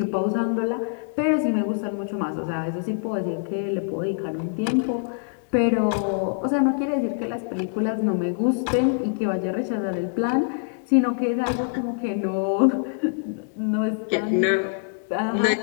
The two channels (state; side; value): silent; right; digital silence